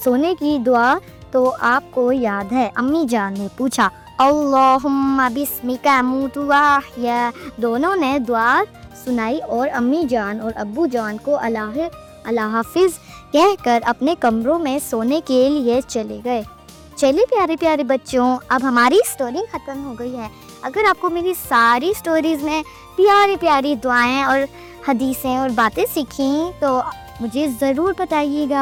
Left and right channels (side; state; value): both; identical; correlation 1.00